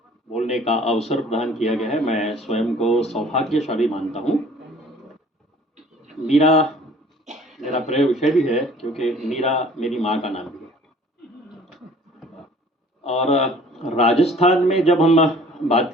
का अवसर प्रदान किया गया है। मैं स्वयं को सौभाग्यशाली मानता हूँ। मीरा मेरा प्रिय विषय भी है क्योंकि मीरा मेरी माँ का नाम भी है। और राजस्थान में जब हम बात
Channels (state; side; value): normal; both; correlation 0.51